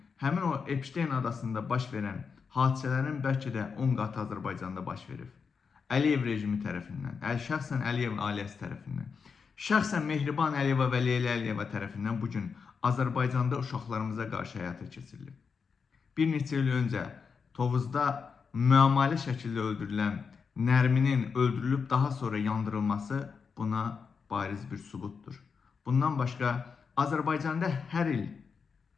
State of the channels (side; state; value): right; quieter; 5.7 dB